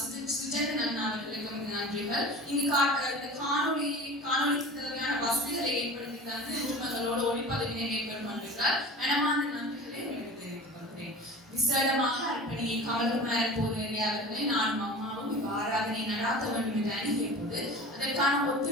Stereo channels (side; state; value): both; normal; correlation 0.37